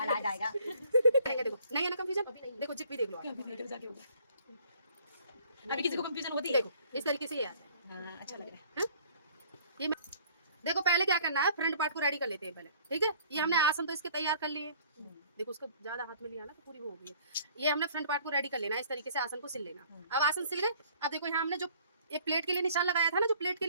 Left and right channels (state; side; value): inverted; both; correlation -0.56